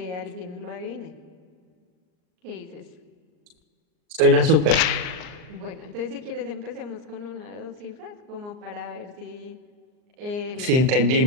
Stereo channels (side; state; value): left; late; 39 ms